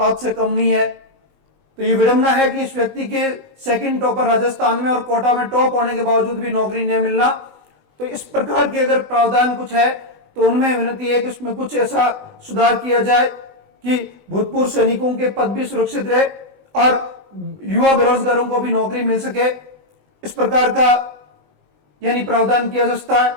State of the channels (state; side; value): late; left; 20 ms